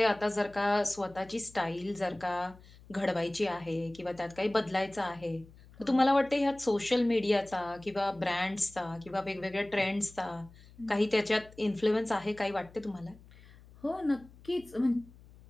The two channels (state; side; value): noise; left; hum, 23 dB below the sound